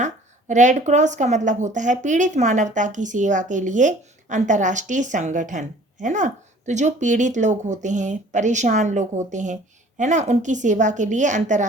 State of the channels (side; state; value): both; normal; correlation 0.51